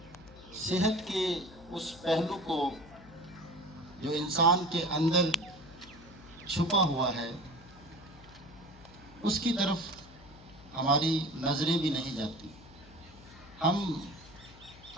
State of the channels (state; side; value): noise; left; hum, 20 dB below the sound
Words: صحت کے اس پہلو کو جو انسان کے اندر چھپا ہوا ہے اس کی طرف ہماری نظریں بھی نہیں جاتی. ہم